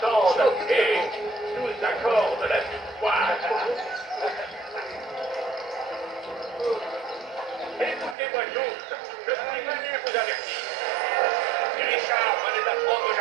et nous accorde la victoire. Écoutez-moi tous, je suis venu vous avertir. Si Richard venait d'apprendre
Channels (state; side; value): drops out; left; at 8.2 s